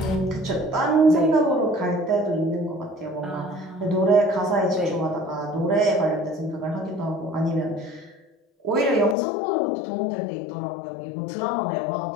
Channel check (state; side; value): drops out; right; at 9.2 s